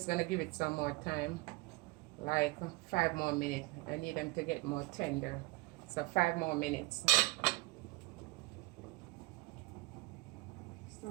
gonna give it some more time, like 5 more minutes. I need them to get more tender, so 5 more minutes.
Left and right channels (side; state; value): left; quieter; 24.2 dB